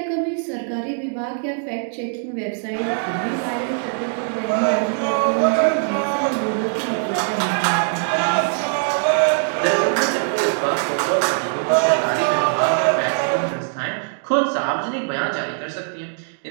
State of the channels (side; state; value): left; silent; digital silence